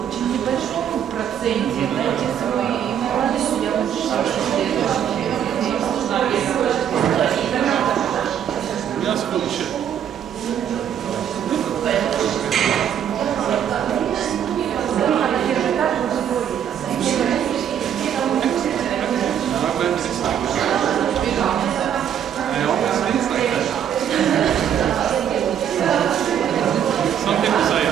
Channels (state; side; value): quieter; left; 9.3 dB